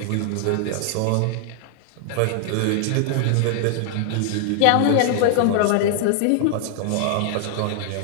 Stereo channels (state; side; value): different; both; correlation -0.01